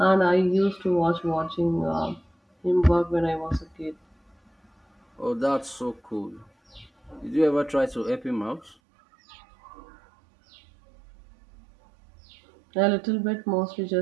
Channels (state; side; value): drops out; left; at 8.8 s